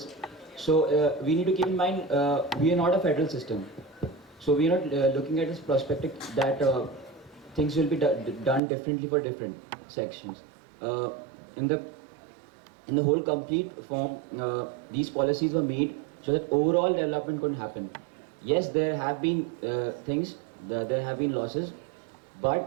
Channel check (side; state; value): left; drops out; at 8.6 s